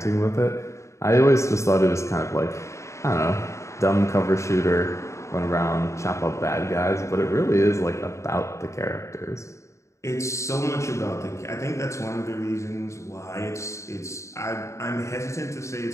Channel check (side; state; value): right; late; 0.14 ms